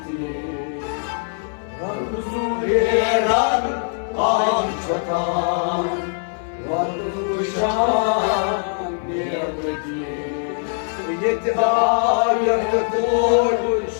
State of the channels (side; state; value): right; silent; digital silence